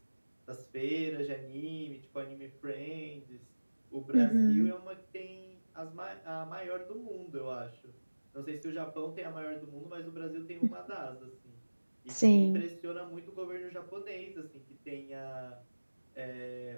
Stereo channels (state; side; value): inverted; both; correlation -1.00